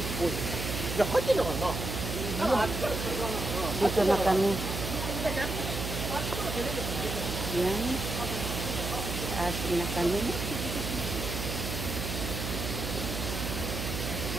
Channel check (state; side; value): noise; right; hum, 4 dB below the sound